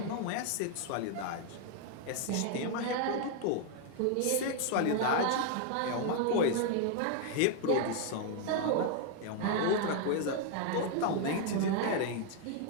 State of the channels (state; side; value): different; both; correlation 0.00